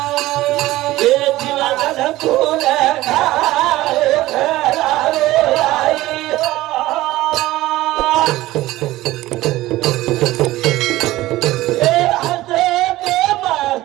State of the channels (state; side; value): quieter; left; 17.0 dB